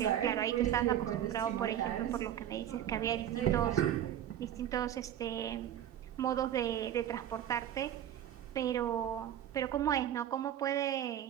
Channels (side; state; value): left; quieter; 10.9 dB